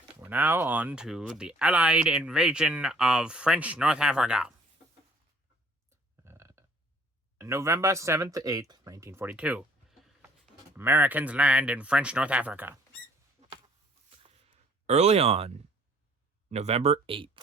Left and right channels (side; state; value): both; normal; correlation 0.57